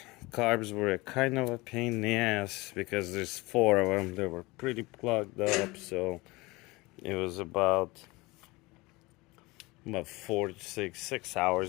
Carbs were kind of a pain in the ass because there's 4 of them. They were pretty plugged up, so it was about 4 to 6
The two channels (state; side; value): quieter; right; 22.8 dB